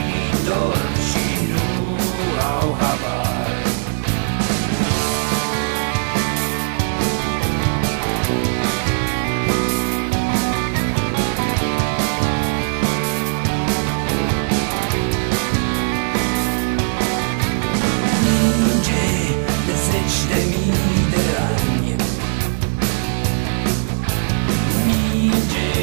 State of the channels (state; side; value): silent; left; digital silence